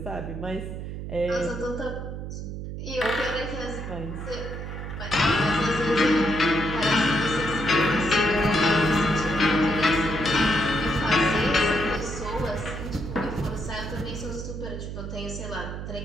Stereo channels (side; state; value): right; noise; hum, 7 dB below the sound